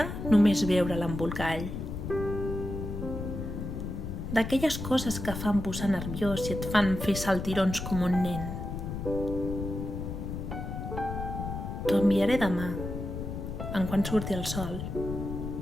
només veure l'embolcall. D'aquelles coses que fan posar nerviós i et fan fer saltirons com un nen. T'ho enviaré demà, en quan surti el sol.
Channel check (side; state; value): left; noise; rumble, 6 dB below the sound